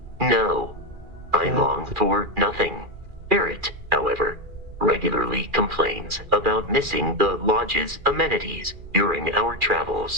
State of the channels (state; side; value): late; left; 2.4 ms